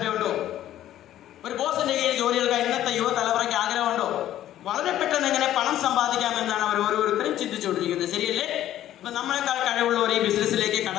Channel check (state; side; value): quieter; right; 12.6 dB